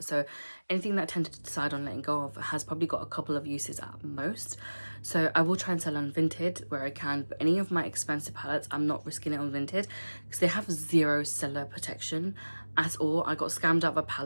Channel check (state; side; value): inverted; both; correlation -1.00